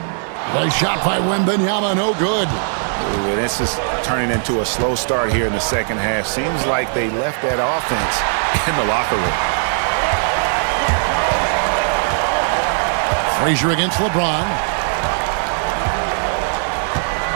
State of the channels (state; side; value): silent; left; digital silence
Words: Nice shot by Wembanyama, no good. Ooh, this is turning into a slow start here in the second half. Seems like they left that offense in the locker room. Frazier against LeBron.